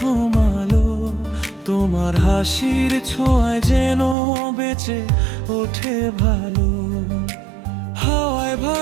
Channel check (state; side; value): drops out; left; at 4.2 s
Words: আলো, তোমার হাসির ছোঁয়ায় যেন বেঁচে ওঠে ভালো। হাওয়ায়